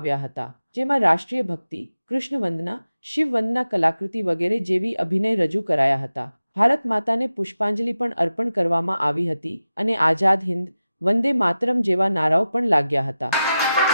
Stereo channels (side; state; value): both; inverted; correlation -0.93